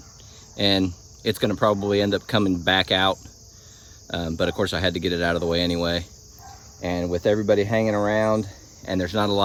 and it's gonna probably end up coming back out. But of course I had to get it out of the way anyway. And with everybody hanging around and there's not a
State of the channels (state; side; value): identical; both; correlation 1.00